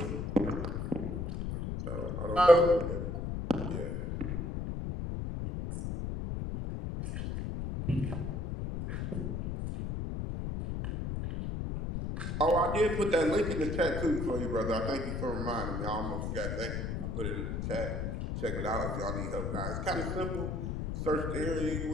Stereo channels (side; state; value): left; noise; rumble, 3 dB below the sound